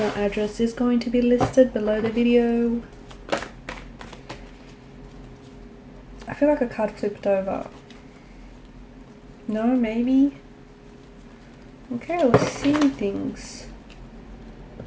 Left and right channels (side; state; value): both; identical; correlation 1.00